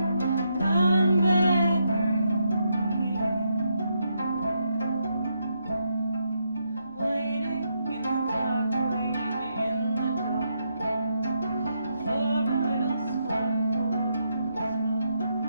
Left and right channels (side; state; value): both; inverted; correlation -0.79